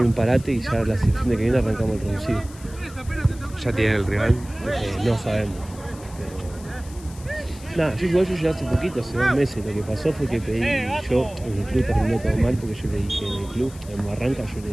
un parate y ya el fin de que viene arrancamos el reducido. ¿Ya tienen el rival? No sabemos. Pero... Nada, yo llegué hace poquito, hace 2 meses. Lo que pasó fue que pedí, yo en el club terminó todo mal porque yo le dije en el club, en Barranca yo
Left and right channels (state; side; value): noise; left; hiss, 20 dB below the sound